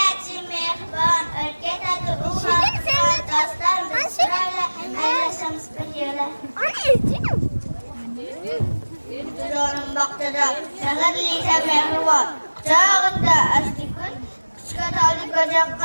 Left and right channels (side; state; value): both; inverted; correlation -1.00